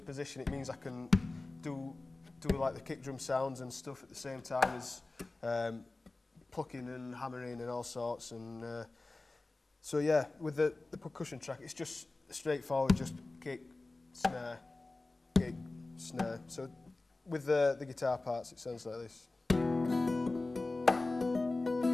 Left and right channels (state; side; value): quieter; right; 3.2 dB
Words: position, it means I can do like the kick drum sounds and stuff at the same time as plucking and hammering and all sorts. And so yeah, with the percussion track, it's just straightforward, just kick, snare, kick, snare. So with the guitar parts, it sounds like this.